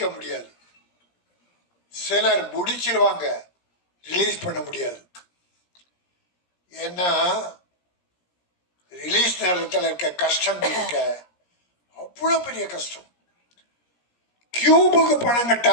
முடியாது. சிலர் முடிச்சிருவாங்க, ரிலீஸ் பண்ண முடியாது. ஏன்னா ரிலீஸ் நேரத்தில் இருக்க கஷ்டம் இருக்க அவ்வளோ பெரிய கஷ்டம். கியூபுக்கு பணம்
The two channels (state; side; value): late; right; 17 ms